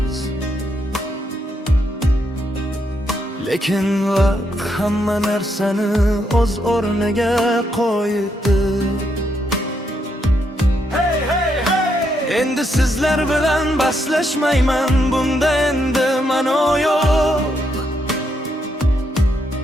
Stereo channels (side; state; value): both; normal; correlation 0.78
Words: lekin vaqt hamma narsani o'z o'rniga qo'ydi. Endi sizlar bilan baslashmayman, bunda endi ma'no yo'q.